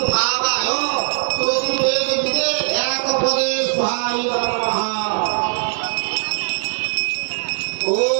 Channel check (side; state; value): left; silent; digital silence